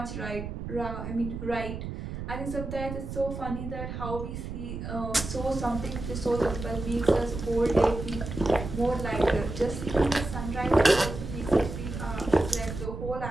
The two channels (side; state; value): right; noise; rumble, 7 dB below the sound